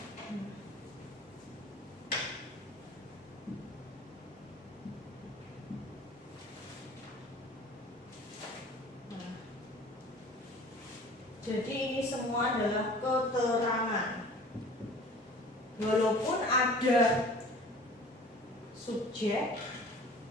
Jadi ini semua adalah keterangan. Walaupun ada subjek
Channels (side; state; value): both; normal; correlation 0.45